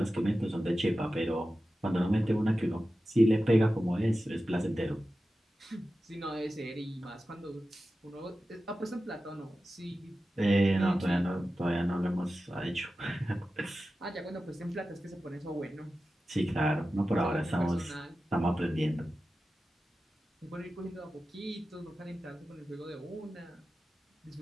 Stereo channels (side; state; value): both; normal; correlation 0.94